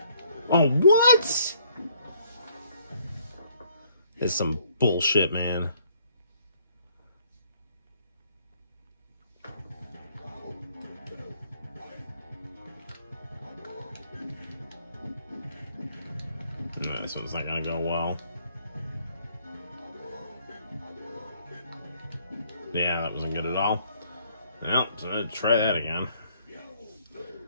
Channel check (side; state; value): both; inverted; correlation -0.65